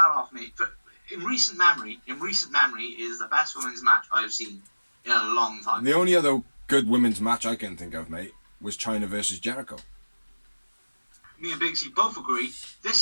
off, mate. But in recent memory, it is the best women's match I've seen in a long time. The only other good women's match I can think of, mate, was Chyna versus Jericho. Me and Big C both agree. This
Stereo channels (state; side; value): inverted; both; correlation -1.00